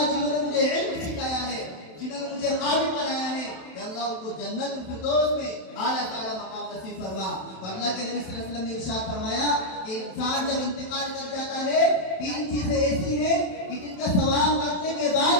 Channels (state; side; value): late; right; 27 ms